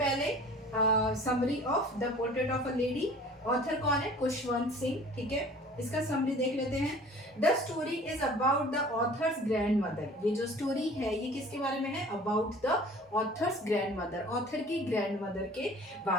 summary of the portrait of a lady. Author कौन है? खुशवंत सिंह, ठीक है। इसका समरी देख लेते हैं। The story is about the author's grand mother. ये जो स्टोरी है ये किसके बारे में है? About the author's grand mother, author की ग्रैंड मदर के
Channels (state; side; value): normal; both; correlation 0.47